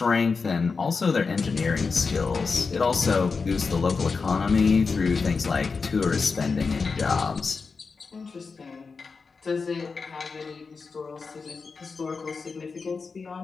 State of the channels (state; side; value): quieter; right; 4.8 dB